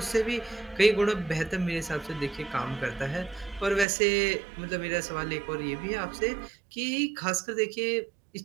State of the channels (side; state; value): left; drops out; at 3.9 s